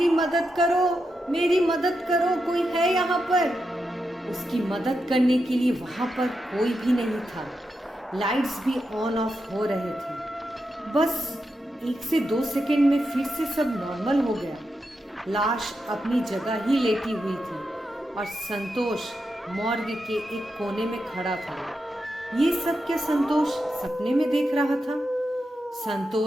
मदद करो, मेरी मदद करो, कोई है यहाँ पर। उसकी मदद करने के लिए वहां पर कोई भी नहीं था। लाइट्स भी ऑन ऑफ हो रहे थे। बस 1 से 2 सेकंड में फिर से सब नॉर्मल हो गया। लाश अपनी जगह ही लेटी हुई थी और संतोष मॉर्ग के एक कोने में खड़ा था। ये सब क्या संतोष सपने में देख रहा था?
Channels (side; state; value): both; normal; correlation 0.87